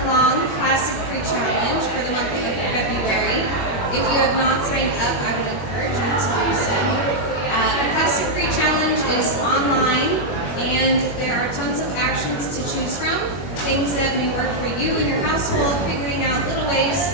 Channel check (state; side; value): late; right; 21 ms